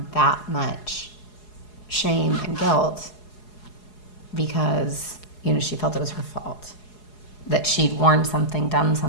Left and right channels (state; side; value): late; right; 4.8 ms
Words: that much shame and guilt because, you know, she felt it was her fault, that she'd worn something, done